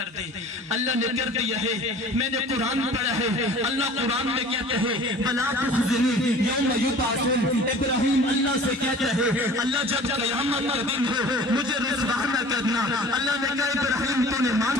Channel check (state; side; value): normal; both; correlation 0.45